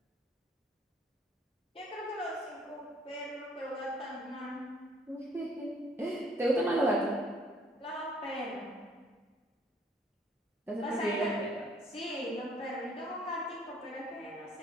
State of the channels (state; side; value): normal; both; correlation 0.61